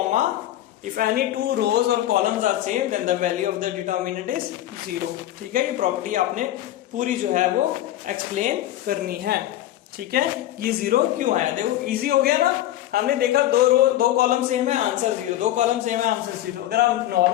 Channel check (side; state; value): right; quieter; 13.7 dB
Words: if any 2 rows और columns are same then the value of the determinant is 0। ठीक है, ये प्रॉपर्टी आपने पूरी जो है वो एक्सप्लेन करनी है। ठीक है, ये 0 क्यों आया, देखो इजी हो गया ना। हमने देखा 2 कॉलम सेम है, आंसर 0, 2 कॉलम सेम है, आंसर 0। अगर आप